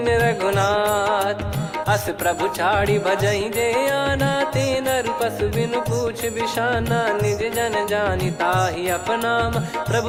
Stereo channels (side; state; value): both; identical; correlation 1.00